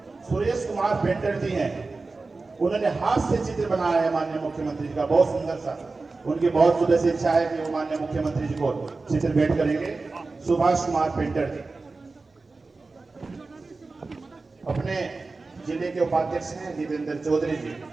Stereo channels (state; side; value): quieter; left; 3.7 dB